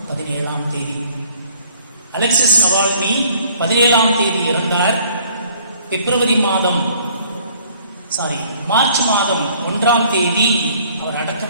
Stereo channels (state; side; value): inverted; both; correlation -0.58